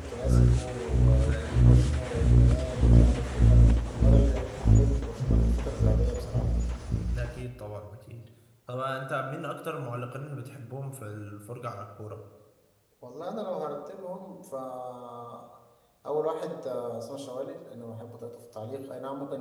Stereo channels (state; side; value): identical; both; correlation 1.00